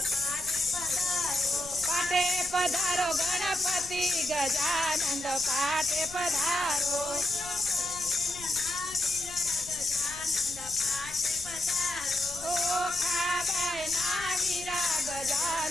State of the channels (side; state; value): left; noise; rumble, 18 dB below the sound